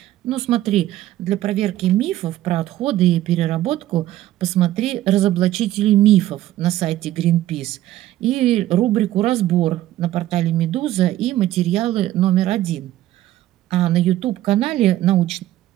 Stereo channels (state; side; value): quieter; left; 14.3 dB